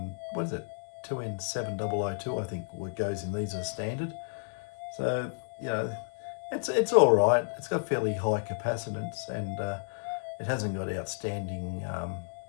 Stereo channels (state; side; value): silent; right; digital silence